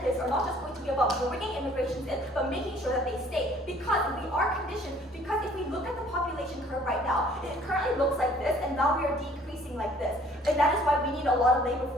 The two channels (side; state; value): both; normal; correlation 0.56